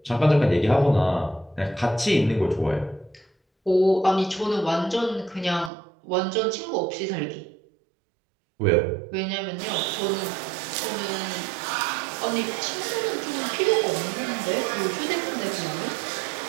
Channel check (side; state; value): left; drops out; at 5.7 s